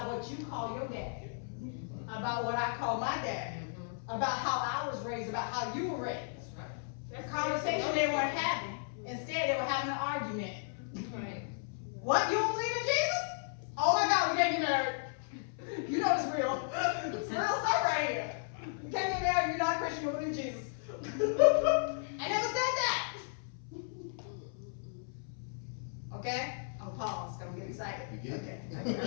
what you call your dad, about what I call my dad, about how I was raised, about how you were raised. The conversation they weren't having. Instead, they were having an argument. Right. What? You don't believe in Jesus? Oh my God, we can't get married. You know it's real. It's real stuff right here. You can't get married, you're not a Christian, you don't believe in Jesus. I never said that. Okay? I'm gonna pause, I'm getting excited. You get Okay. I'm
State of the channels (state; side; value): silent; right; 55 dB below the other